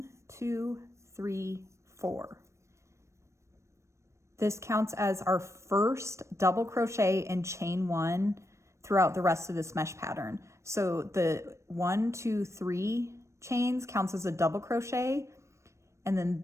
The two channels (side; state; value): left; late; 0.14 ms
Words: 2, 3, 4. This counts as our first double crochet and chain 1 throughout the rest of this mesh pattern. So the 1, 2, 3 chains counts as a double crochet, and